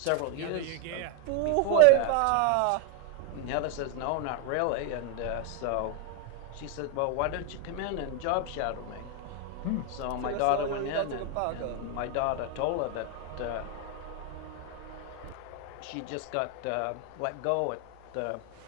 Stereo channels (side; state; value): both; different; correlation 0.01